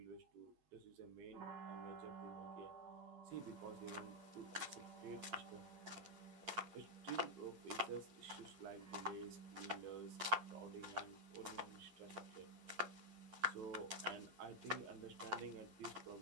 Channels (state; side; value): late; left; 9.6 ms